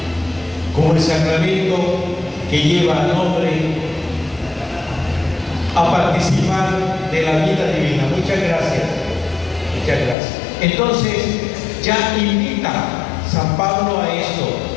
como el sacramento que lleva al hombre a participar de la vida divina. Muchas gracias. Muchas gracias. Entonces, ya invita San Pablo a esto,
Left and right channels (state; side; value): drops out; right; at 10.2 s